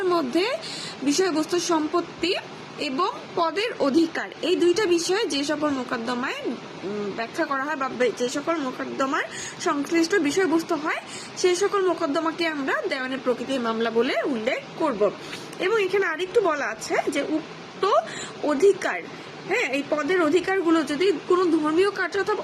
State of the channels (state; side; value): identical; both; correlation 1.00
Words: মধ্যে বিষয়বস্তু সম্পত্তি এবং পদের অধিকার এই দুইটা বিষয়ে যে সকল মোকদ্দমায় ব্যাখ্যা করা হয় বা যে সকল মোকদ্দমার সংশ্লিষ্ট বিষয়বস্তু হয় সেই সকল মোকদ্দমাকে আমরা দেওয়ানি প্রকৃতির মামলা বলে উল্লেখ করব। এবং এখানে আরেকটু বলা আছে যে উক্ত অধিকার, এই পদের অধিকারগুলো যদি কোনো ধর্মীয় কার্য